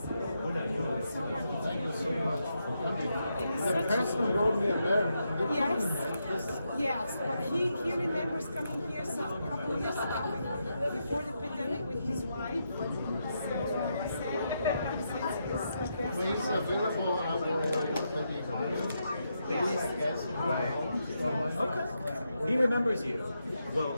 The person wrote me a letter. Yes, but he remembers coming here a couple of years ago before the pandemic with his wife. So When he's available, I will let you know. Okay. He remembers you. Well,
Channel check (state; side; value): inverted; both; correlation -0.83